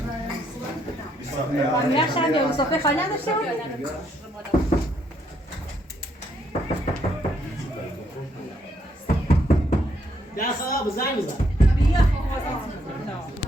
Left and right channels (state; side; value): normal; both; correlation 0.73